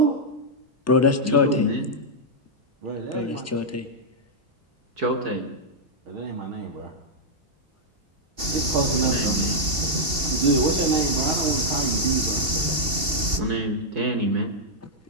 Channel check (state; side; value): late; left; 2.7 ms